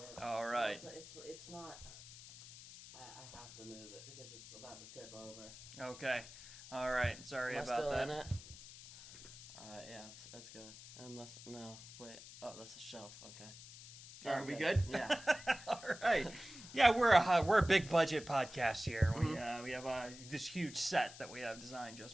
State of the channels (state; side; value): noise; left; hiss, 15 dB below the sound